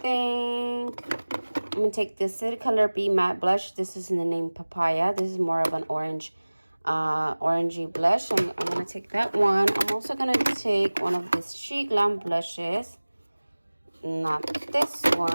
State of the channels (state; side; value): inverted; both; correlation -1.00